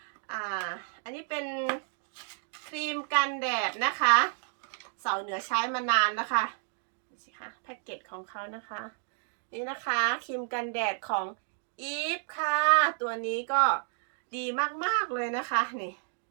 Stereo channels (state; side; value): silent; left; digital silence